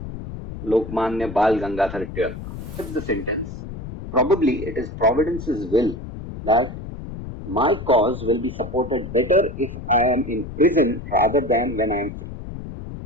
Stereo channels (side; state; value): left; noise; rumble, 10 dB below the sound